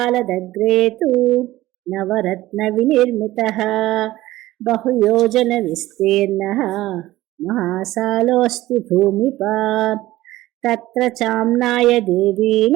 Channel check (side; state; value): left; quieter; 16.6 dB